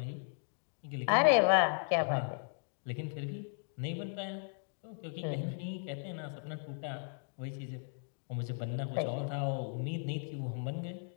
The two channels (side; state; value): right; silent; digital silence